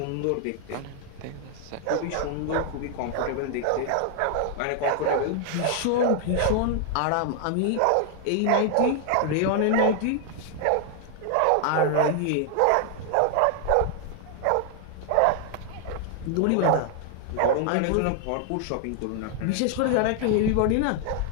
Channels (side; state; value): both; different; correlation 0.00